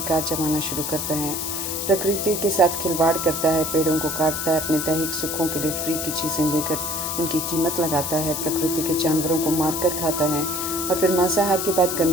जमाना शुरू करता है। प्रकृति के साथ खिलवाड़ करता है, पेड़ों को काटता है, अपने दैहिक सुखों के लिए फ्री की चीज़ें लेकर उनकी कीमत लगाता है, प्रकृति के जानवरों को मारकर खाता है और फिर मांसाहार के बाद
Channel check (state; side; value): noise; left; hiss, 3 dB below the sound